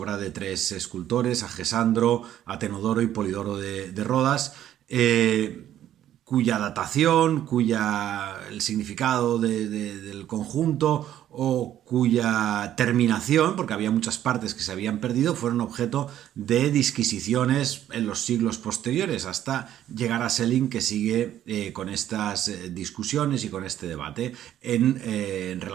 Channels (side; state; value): left; quieter; 11.7 dB